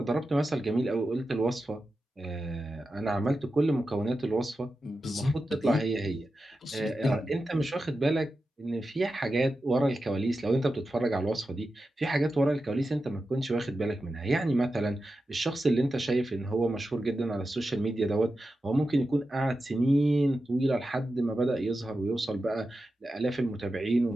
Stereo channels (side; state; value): both; normal; correlation 0.91